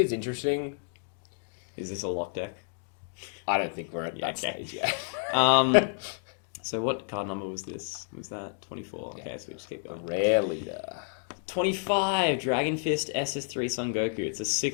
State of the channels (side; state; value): right; silent; digital silence